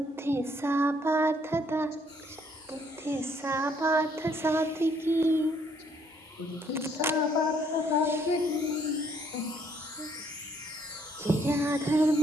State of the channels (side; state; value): both; normal; correlation 0.67